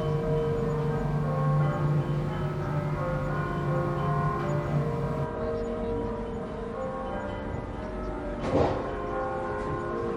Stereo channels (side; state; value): both; identical; correlation 1.00